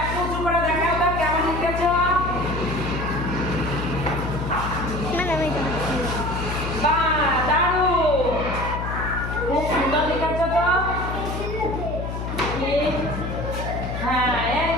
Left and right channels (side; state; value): left; noise; hum, 5 dB below the sound